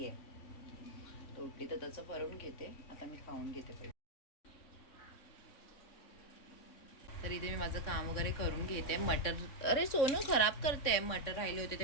आहे, तर उठली तर त्याचं भरून घेते. आता मी खाऊन घेते पहिले. तर इथे मी माझं काम वगैरे करून घेते. मटर, अरे सोनू खराब करते. मटर राहिले होते ते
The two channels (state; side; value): late; right; 3.6 ms